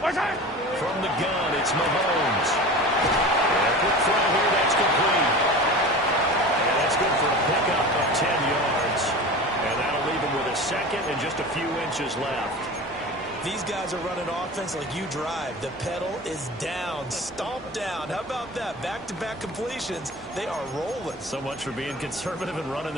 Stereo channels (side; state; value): both; normal; correlation 0.34